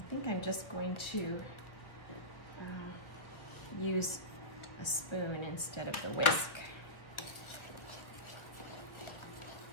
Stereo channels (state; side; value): late; right; 1.2 ms